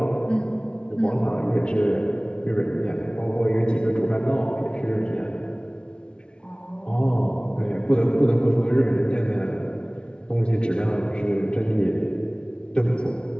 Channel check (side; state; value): right; late; 0.056 ms